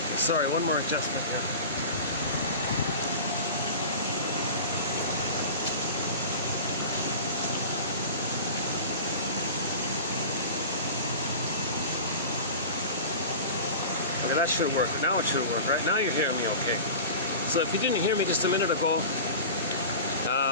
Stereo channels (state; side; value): inverted; both; correlation -0.34